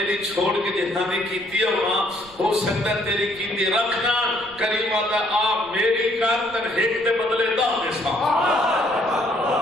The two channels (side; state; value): right; noise; rumble, 25 dB below the sound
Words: چھوڑ کے جنہاں نے کیتی ہے وہاں ہو سکتا تیری کیتی رکھنا کریمہ دا آپ میری کار تن ہیک دے بدلے دا دیسا